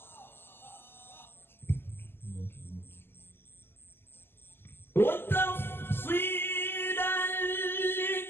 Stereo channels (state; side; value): late; right; 0.11 ms